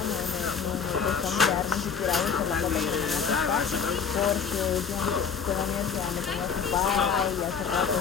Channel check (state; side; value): quieter; right; 6.5 dB